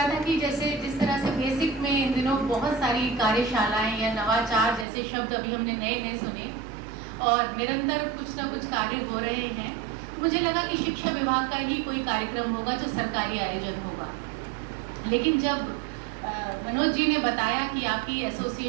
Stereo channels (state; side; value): drops out; left; at 4.9 s